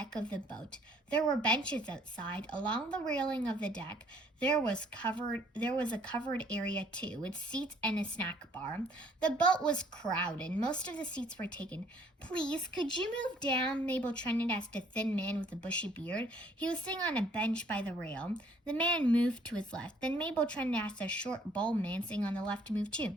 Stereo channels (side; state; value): both; normal; correlation 0.61